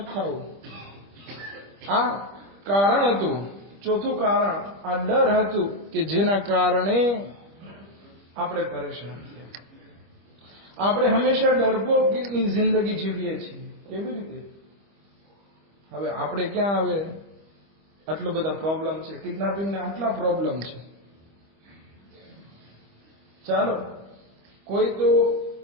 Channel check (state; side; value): late; left; 25 ms